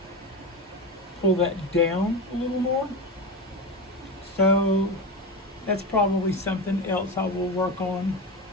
down a little more. So that's probably something else I will work on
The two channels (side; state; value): both; normal; correlation 0.21